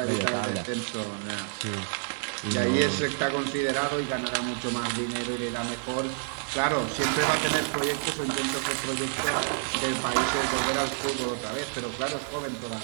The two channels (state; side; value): silent; left; digital silence